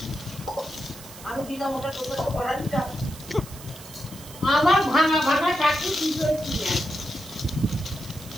আমি দিলাম ওটা তোকে পড়ালিটা। আমার ভাঙা ভাঙা চাকরি কি করেছি?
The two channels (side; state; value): right; noise; hiss, 16 dB below the sound